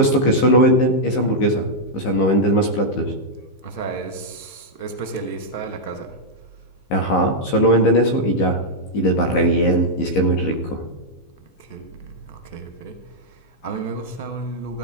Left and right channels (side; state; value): right; late; 15 ms